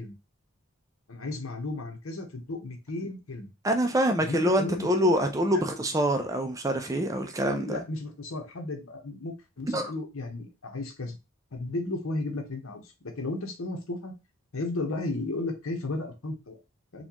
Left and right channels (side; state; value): both; normal; correlation 0.50